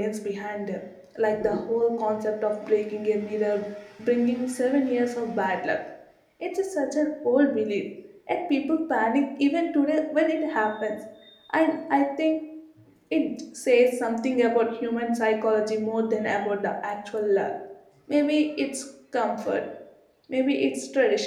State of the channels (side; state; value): both; identical; correlation 1.00